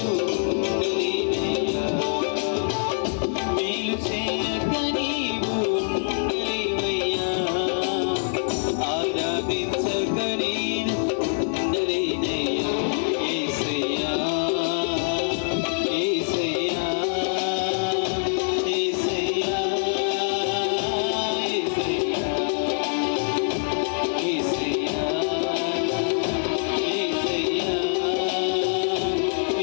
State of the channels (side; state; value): right; silent; digital silence